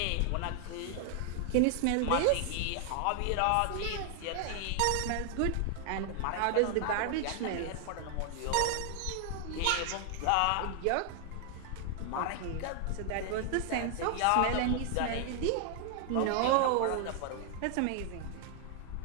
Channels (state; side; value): different; both; correlation 0.00